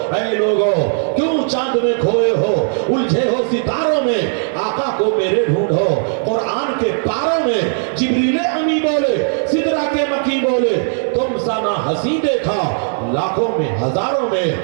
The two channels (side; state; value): left; silent; digital silence